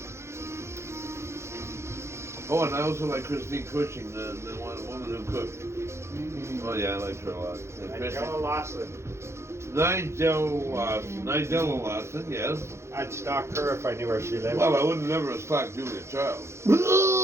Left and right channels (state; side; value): late; left; 0.13 ms